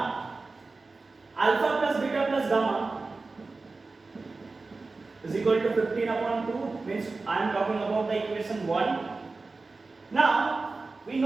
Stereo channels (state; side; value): quieter; left; 3.7 dB